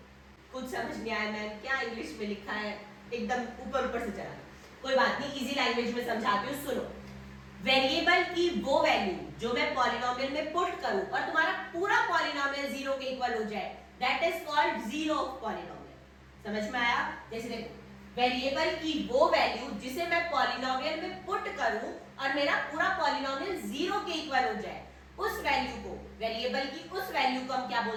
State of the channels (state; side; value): identical; both; correlation 1.00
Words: कुछ समझ नहीं आया मैम, क्या इंग्लिश में लिखा है, एकदम ऊपर ऊपर से चला, कोई बात नहीं, इजी लैंग्वेज में समझाती हूँ, सुनो। वेरिएबल की वो वैल्यू जो मैं पॉलिनोमियल में पुट करूं और तुम्हारा पूरा पॉलिनोमियल 0 के इक्वल हो जाए, that is called zero of polynomial. समझ में आया, जैसे देखो वेरिएबल की वो वैल्यू जिसे मैं पॉलिनोमियल में पुट करूं और मेरा पूरा पॉलिनोमियल 0 के इक्वल हो जाए, उस वैल्यू को, वेरिएबल की उस वैल्यू को हम क्या